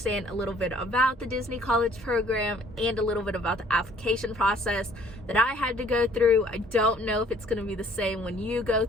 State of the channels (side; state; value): both; normal; correlation 0.58